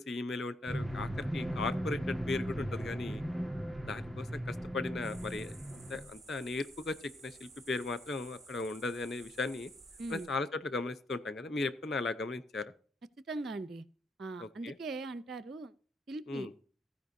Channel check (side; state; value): both; normal; correlation 0.76